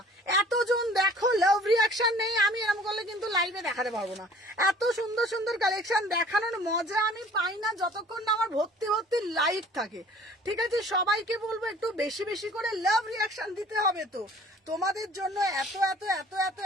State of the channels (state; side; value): normal; both; correlation 0.51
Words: এতজন দেখো লাভ রিয়াকশন নেই, আমি এরকম করলে কিন্তু লাইভে দেখাতে পারবো না। এত সুন্দর কালেকশন দেখানোর মজা আমি পাই না যতক্ষণ না আমার ভর্তি লাইভ থাকে, ঠিক আছে। সবাইকে বলবো একটু বেশি করে লাভ রিয়াকশন দিতে হবে। তো তোমাদের জন্য